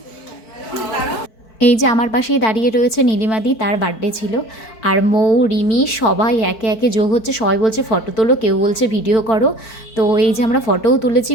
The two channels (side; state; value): right; late; 4.5 ms